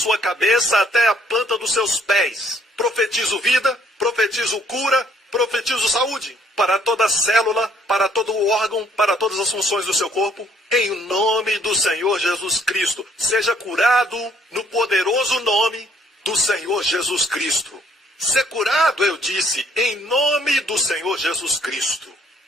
cabeça até a planta dos seus pés. Profetizo vida, profetizo cura, profetizo saúde para toda célula, para todo órgão, para todas as funções do seu corpo. Em nome do Senhor Jesus Cristo, seja curado no poderoso nome do Senhor Jesus Cristo. Ser curado, eu disse, em nome do Senhor Jesus Cristo.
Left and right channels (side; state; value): both; normal; correlation 0.64